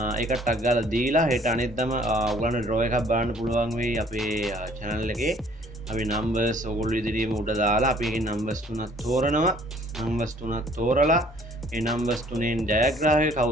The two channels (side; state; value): both; normal; correlation 0.57